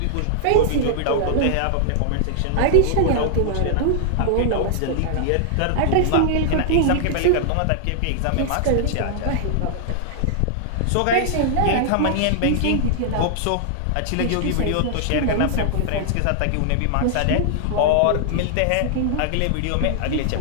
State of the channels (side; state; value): both; different; correlation -0.01